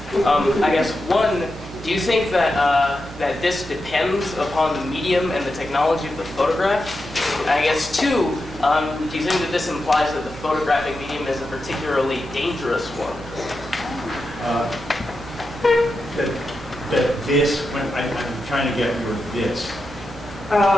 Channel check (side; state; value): both; normal; correlation 0.89